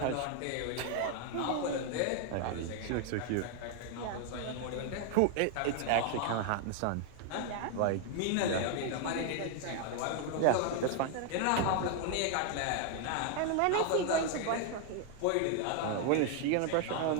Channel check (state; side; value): different; both; correlation 0.00